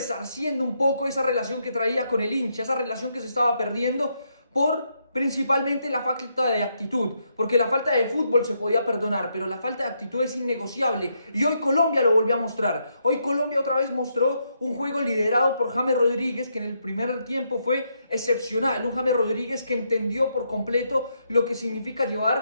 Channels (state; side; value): inverted; both; correlation -0.78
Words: un poco esa relación que traía con el hincha, esa relación que se estaba perdiendo por principalmente la falta de actitud, porque la falta de fútbol se podía perdonar, pero la falta de actitud es innegociable, y hoy Colombia lo volvió a mostrar. Hoy Colombia otra vez mostró un juego liderado por James Rodríguez, que en el primer tiempo fue excepcional, un James Rodríguez que entendió por completo lo que significa